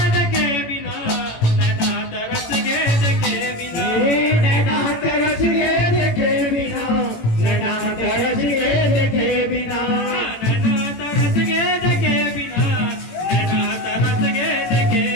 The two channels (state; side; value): late; right; 18 ms